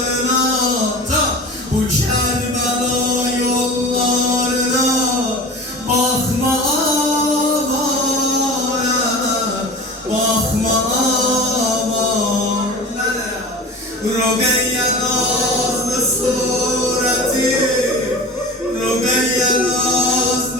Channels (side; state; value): both; normal; correlation 0.34